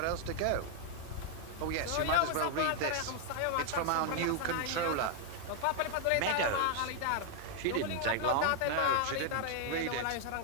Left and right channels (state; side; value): different; both; correlation 0.00